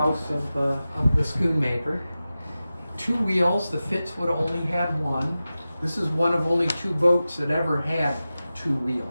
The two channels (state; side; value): inverted; both; correlation -0.95